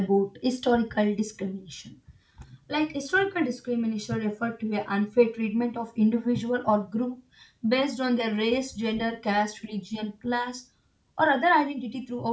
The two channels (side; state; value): both; identical; correlation 1.00